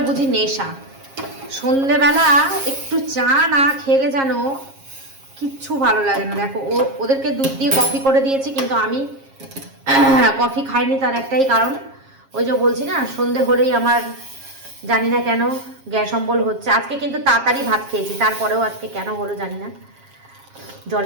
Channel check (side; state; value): left; late; 7.4 ms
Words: বুঝি নেশা। সন্ধেবেলা একটু চা না খেলে যেন কিচ্ছু ভালো লাগে না। দেখো ওদেরকে দুধ দিয়ে কফি করে দিয়েছি, কিন্তু আমি কফি খাইনি। তার একটাই কারণ, ওই যে বলছি না, সন্ধে হলেই আমার জানি না কেন গ্যাস অম্বল হচ্ছে। আজকে কিন্তু তাড়াতাড়ি ভাত খেয়েছি, তারপরেও আজকে কেন হলো জানি না,